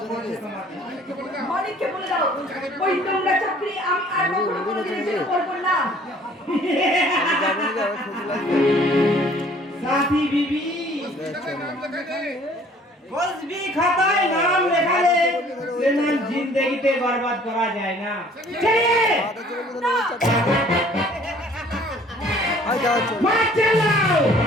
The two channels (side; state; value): both; normal; correlation 0.54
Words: নাকি মালিককে বলে দাও, ওই নোংরা চাকরি আমি আর কখনো কোনোদিনও করবো না। যাবো নাকি আবার খুশি লাগবে साथी बीबी कुछ भी खाताय नाम लिखा ले लेकिन जिंदगी ते बर्बाद करा जाए ना चलिए ভাত চলে গেছে না চাটা আই যাও চল মার চালাও